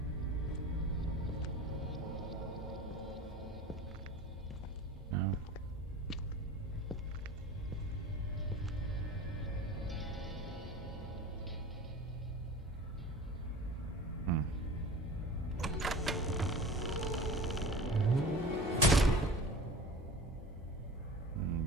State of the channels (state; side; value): normal; both; correlation 0.37